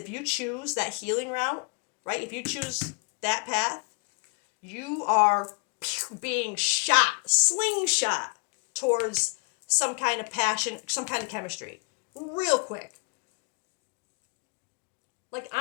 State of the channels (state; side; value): quieter; right; 33.7 dB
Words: you choose that healing route, right? If you choose that path, you are being slingshot towards some kind of passion, some kind of chemistry, real quick. Like,